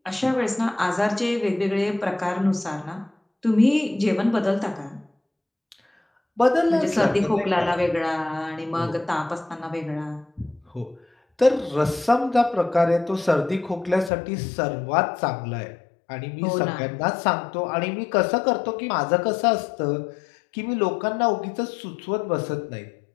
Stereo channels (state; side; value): drops out; right; at 14.1 s